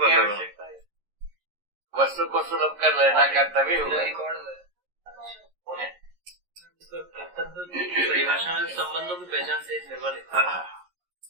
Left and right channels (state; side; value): late; left; 11 ms